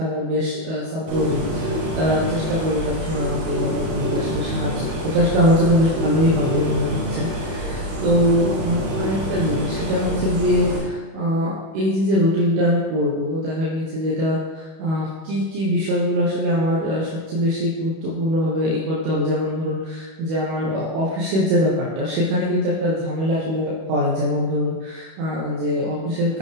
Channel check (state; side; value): late; left; 31 ms